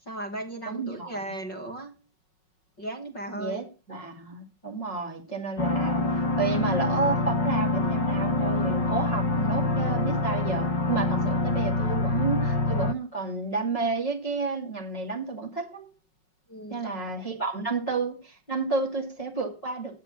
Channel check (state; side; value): late; right; 5.4 ms